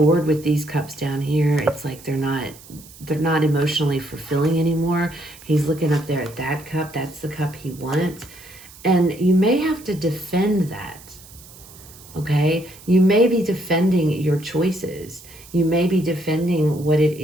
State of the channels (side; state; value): right; noise; hiss, 20 dB below the sound